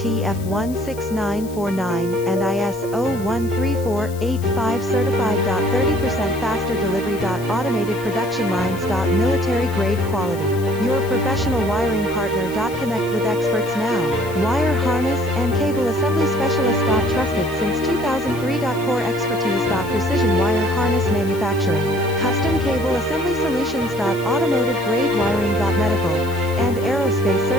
and ISO 13485 certified. 30% faster delivery. Automated production lines. Military grade quality. Your professional wiring partner. Connect with experts now. Wire harness and cable assembly specialist. Trusted since 2003. Core expertise. Precision wire harness manufacturing, custom cable assembly solutions. Automotive grade wiring. Medical and aerospace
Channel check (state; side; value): noise; left; hiss, 18 dB below the sound